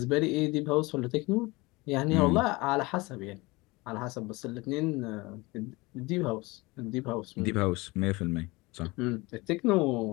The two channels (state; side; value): quieter; right; 23.4 dB